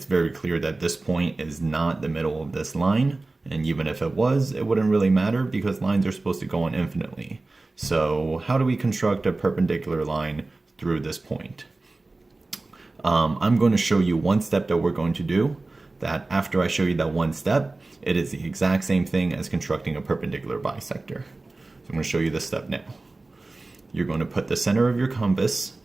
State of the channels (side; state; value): left; quieter; 3.2 dB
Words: very clear that this point is not the middle of this line, and even if it was, it wouldn't really matter because lines are supposed to go on infinitely. So how do we construct a perpendicular line through this point? I'm going to show you one step that we're going to do, that after I show you that one step, it is the exact same thing as constructing a perpendicular bisector. So I'm going to show you this step now. You're going to put the center of your compass